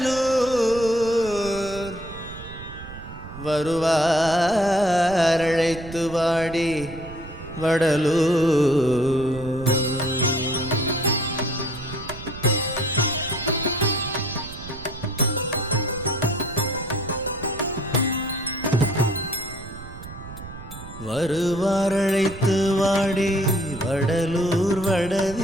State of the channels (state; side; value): noise; right; rumble, 14 dB below the sound